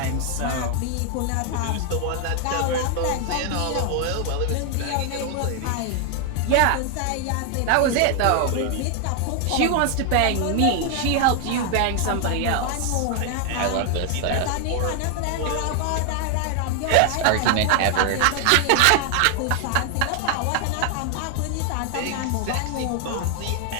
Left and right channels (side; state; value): both; different; correlation 0.00